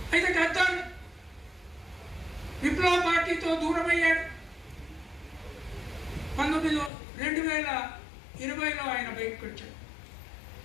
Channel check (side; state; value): right; drops out; at 6.9 s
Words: అయితే గద్దర్ విప్లవ పార్టీతో దూరమయ్యాడు. 2020లో ఆయన బయటకు వచ్చాడు.